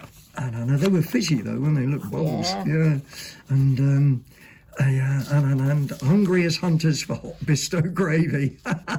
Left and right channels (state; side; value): identical; both; correlation 1.00